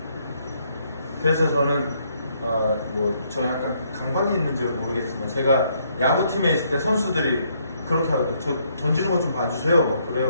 그래서 저는 저 약간 감각이 있는지 모르겠지만 제가 야구팀에 있을 때 선수들이 그렇게 하거든요. 저 던지는 것 좀 봐주세요. 막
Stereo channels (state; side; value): inverted; both; correlation -0.71